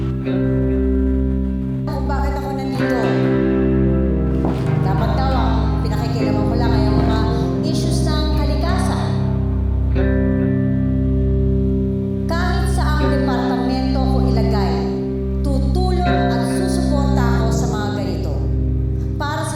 Kung bakit ako nandito? Dapat daw ang pinakikilaman ko lang ay ang mga issues ng kalikasan. Kahit saang departamento ko ilagay, tutulong at susuporta ako sa mga ganito. Para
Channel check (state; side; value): identical; both; correlation 1.00